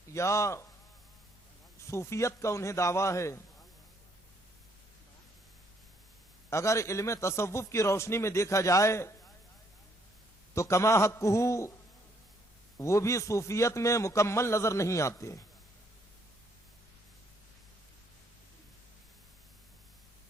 یا صوفیت کا انہیں دعویٰ ہے، اگر علم تصوف کی روشنی میں دیکھا جائے تو کما حقہ وہ بھی صوفیت میں مکمل نظر نہیں آتے.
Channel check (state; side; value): normal; both; correlation 0.68